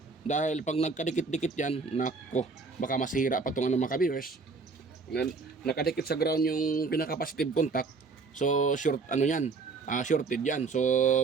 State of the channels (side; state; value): left; quieter; 4.3 dB